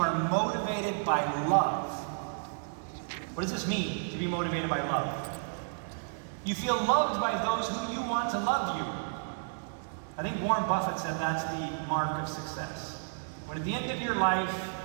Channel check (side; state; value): left; silent; digital silence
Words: motivated by love. What does this mean, to be motivated by love? You feel loved by those who you want to love you. I think Warren Buffett said that's the mark of success. When at the end of your life,